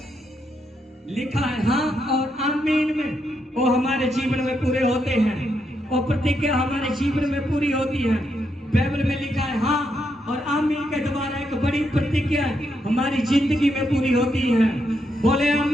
लिखा है हाँ और आमीन में वो हमारे जीवन में पूरे होते हैं, और प्रतिज्ञा हमारे जीवन में पूरी होती है। बाइबल में लिखा है हाँ और आमीन के द्वारा एक बड़ी प्रतिज्ञा हमारी जिंदगी में पूरी होती है। बोले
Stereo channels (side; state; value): both; normal; correlation 0.80